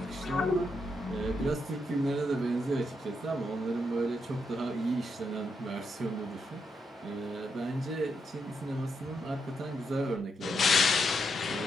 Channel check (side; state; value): both; normal; correlation 0.80